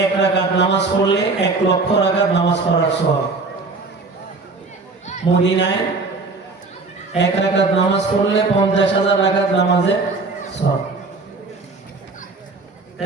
1 রাকাত নামাজ পড়লে 1 লক্ষ রাকাত নামাজ পড়ার সওয়াব, মদিনায় 1 রাকাত নামাজ পড়লে 50,000 রাকাত নামাজের সওয়াব।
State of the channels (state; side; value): quieter; left; 3.8 dB